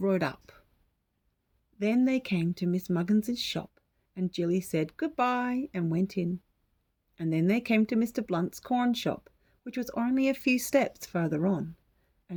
up." Then they came to Miss Muggins's shop, and Jilly said goodbye and went in. And then they came to Mr. Blunt's corn shop, which was only a few steps further on,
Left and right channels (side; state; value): both; identical; correlation 1.00